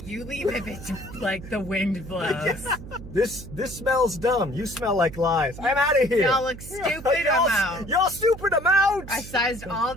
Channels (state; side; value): noise; right; hum, 13 dB below the sound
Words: You leave if it's like the wind blows. This smells dumb. You smell like lies. I'm out of here. Y'all look stupid, I'm out. Y'all stupid, I'm out. I sized all